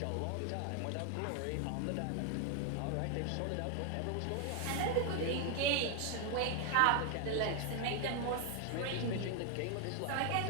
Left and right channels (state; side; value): different; both; correlation 0.00